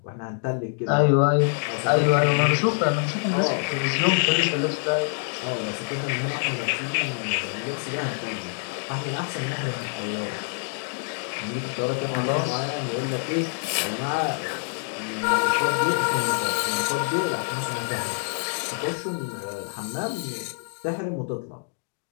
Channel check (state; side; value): silent; right; 56 dB below the other